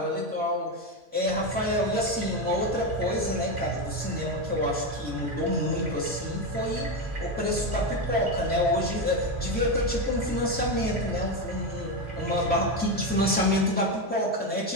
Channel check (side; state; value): both; normal; correlation 0.12